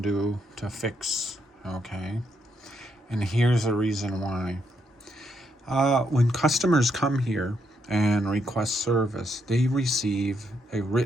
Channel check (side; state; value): both; normal; correlation 0.77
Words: do to fix, okay? And here's the reason why. When customers come here and request service, they receive a